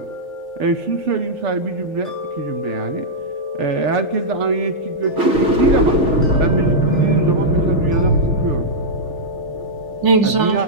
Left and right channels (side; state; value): left; late; 3.4 ms